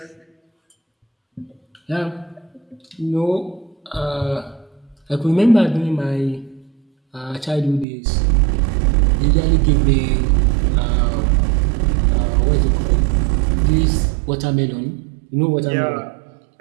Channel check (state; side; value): drops out; left; at 7.9 s